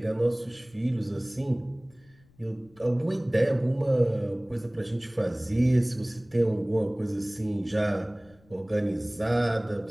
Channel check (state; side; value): noise; left; rumble, 29 dB below the sound